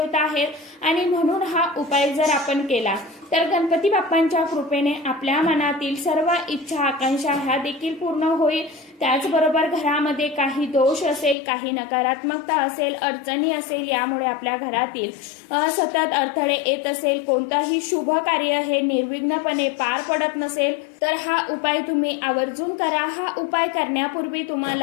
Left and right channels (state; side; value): drops out; right; at 11.4 s